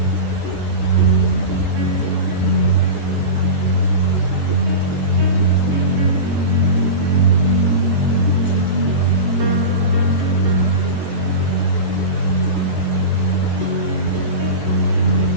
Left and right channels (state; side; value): late; left; 14 ms